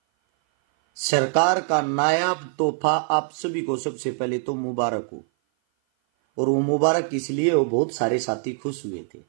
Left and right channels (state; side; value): silent; left; 56 dB below the other